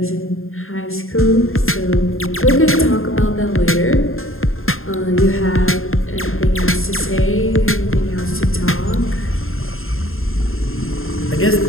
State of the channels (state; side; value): late; right; 0.61 ms